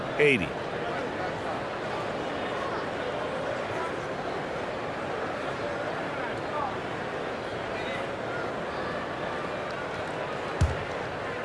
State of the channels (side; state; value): both; identical; correlation 1.00